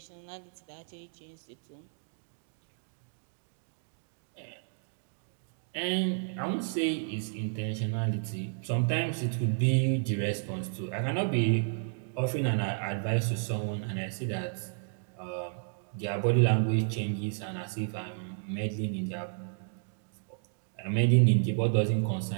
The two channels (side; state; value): left; silent; digital silence